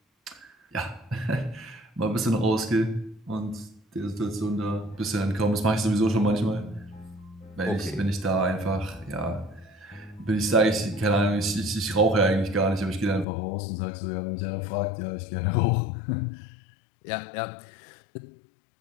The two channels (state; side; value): drops out; right; at 13.2 s